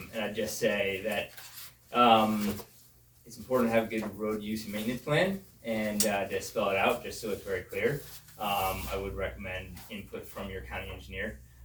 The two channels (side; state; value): both; identical; correlation 1.00